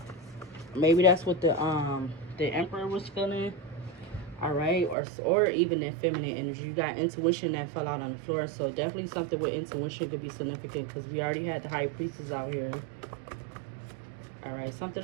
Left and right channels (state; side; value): drops out; left; at 5.0 s